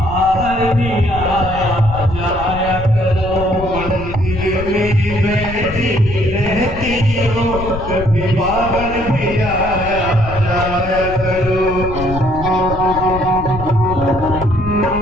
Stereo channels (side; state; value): left; noise; rumble, 9 dB below the sound